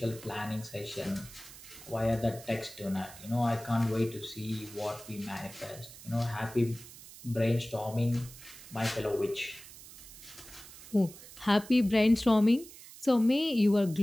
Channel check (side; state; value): right; noise; hiss, 17 dB below the sound